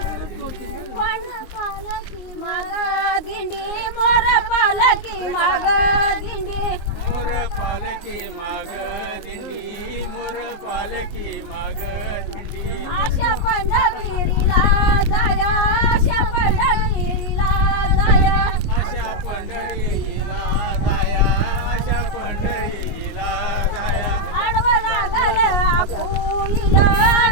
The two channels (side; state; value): right; late; 19 ms